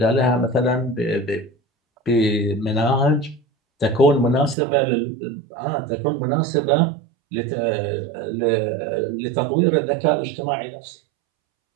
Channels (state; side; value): drops out; left; at 4.5 s